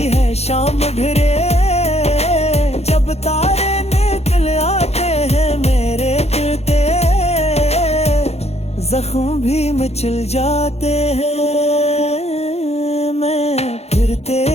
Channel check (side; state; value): right; late; 0.31 ms